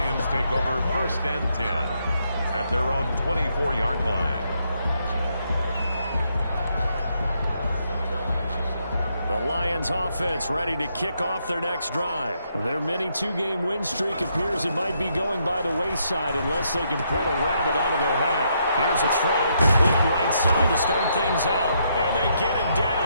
take over 1st and 10 at their own 24-yard line. The Lions offense ready to kick off their next drive. Their mini 2-game win streak appears it might be going by the wayside unless they can pull a rabbit out of their hat. Here's a throw, complete right side to start things out. And they get him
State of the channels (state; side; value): inverted; both; correlation -0.76